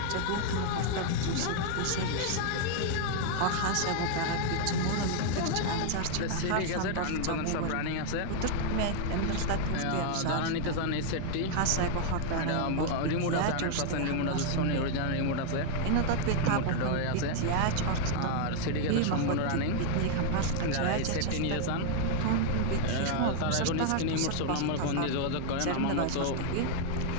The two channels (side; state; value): both; different; correlation 0.00